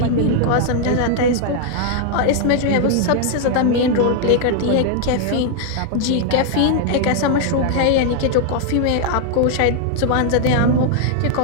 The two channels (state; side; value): different; both; correlation 0.00